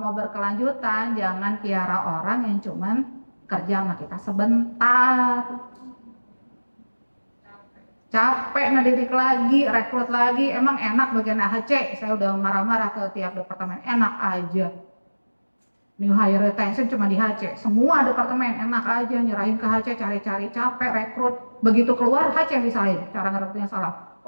berkelanjutan jangan piara orang yang cuman kerja sama kita sebentar. Capek ngedidik lagi, rekrut lagi, emang enak bagian AHC. Saya udah marah-marah ke tiap departemen, enak aja. New hire retention cuma di HC, semua departemen enak aja nyerahin ke HC, cari-cari, capek rekrut. Begitu keluar HC misalnya, cara ngerekrutnya salah.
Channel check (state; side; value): inverted; both; correlation -1.00